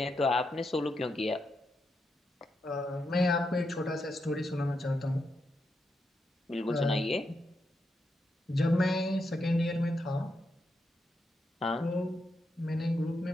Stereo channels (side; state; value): both; normal; correlation 0.84